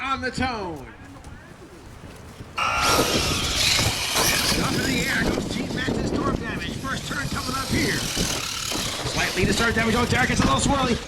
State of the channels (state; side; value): identical; both; correlation 1.00